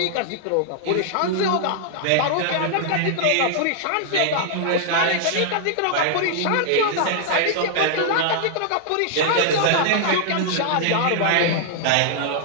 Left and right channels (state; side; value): different; both; correlation -0.01